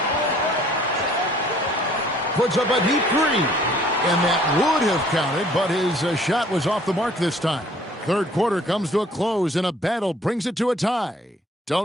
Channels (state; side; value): normal; both; correlation 0.57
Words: Puts up a deep 3. And that would have counted, but his shot was off the mark this time. Third quarter comes to a close, and a battle brings it to a tie.